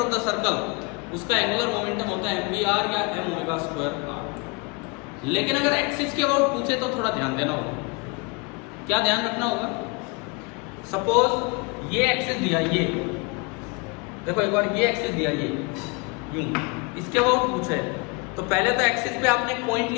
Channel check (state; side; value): quieter; right; 29.9 dB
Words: of the circle उसका एंगुलर मोमेंटम होता है mvr या m ओमेगा स्क्वायर r। लेकिन अगर एक्सिस के अबाउट पूछे तो थोड़ा ध्यान देना होगा। क्या ध्यान रखना होगा? सपोज ये एक्सिस दिया, ये देखो एक बार ये एक्सिस दिया, ये यूं, इसके अबाउट पूछे तो पहले तो एक्सिस पे आपने पॉइंट